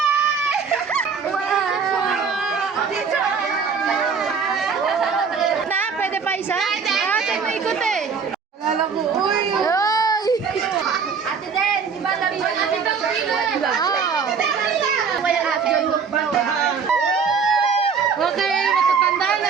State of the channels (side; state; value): left; quieter; 5.9 dB